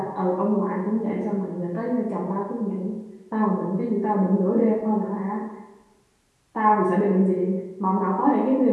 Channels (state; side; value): identical; both; correlation 1.00